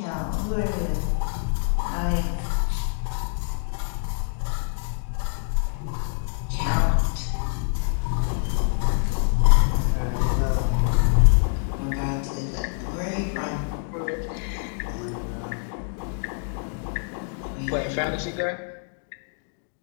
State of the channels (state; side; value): silent; right; 61 dB below the other